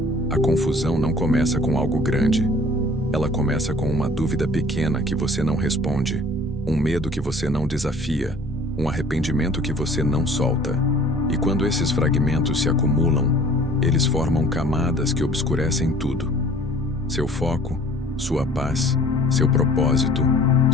A confusão não começa com algo grande. Ela começa com uma dúvida pequena que você não responde, um medo que você não desafia, um arrependimento que você não solta. E quando esses fragmentos se acumulam, eles formam camadas que obscurecem tudo. Seu foco, sua paz, seu propósito,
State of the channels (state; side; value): normal; both; correlation 0.51